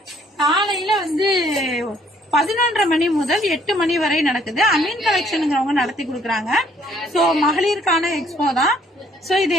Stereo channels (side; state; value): both; normal; correlation 0.63